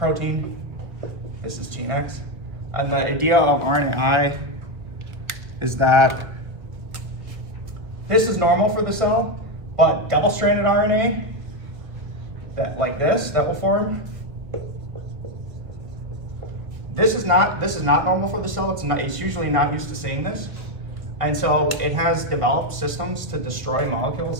This is gene X. And the idea of RNAi is that this is normal for the cell, but double-stranded RNA, that like this, that will form. This is not normal for the cell. It's usually not used to seeing this. And so it has developed systems to destroy molecules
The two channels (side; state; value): left; late; 1.4 ms